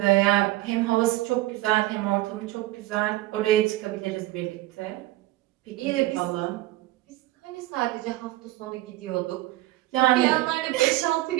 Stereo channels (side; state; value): left; quieter; 17.5 dB